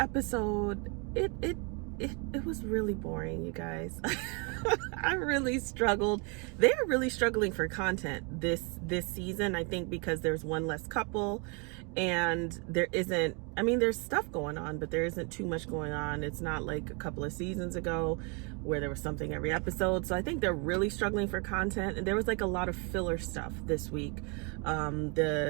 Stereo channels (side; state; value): left; quieter; 33.7 dB